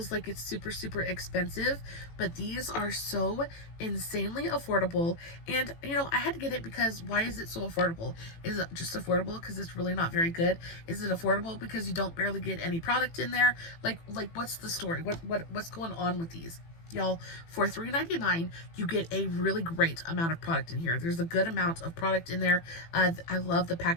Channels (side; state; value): right; late; 18 ms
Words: like it's super, super expensive. But these are so insanely affordable, and you know, I had to get it because why is it so affordable? Is it just affordable because it's really not very good? Is it affordable because you don't barely get any product in there? Like what's the story? What's going on with these? Y'all, for $3.99, you get a really great amount of product in here. There's a good amount of product in there. I love the